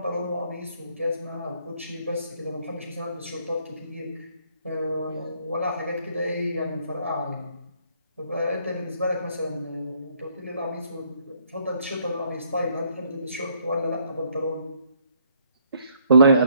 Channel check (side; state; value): both; inverted; correlation -0.68